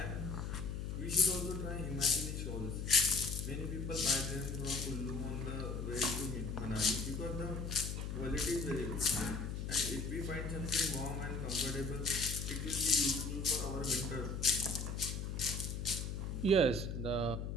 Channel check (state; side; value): noise; left; hum, 4 dB below the sound